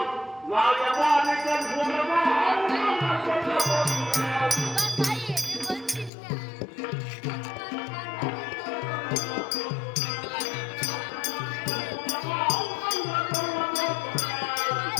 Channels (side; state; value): right; drops out; at 6.1 s